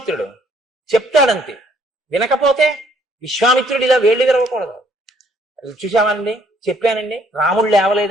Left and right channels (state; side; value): normal; both; correlation 0.64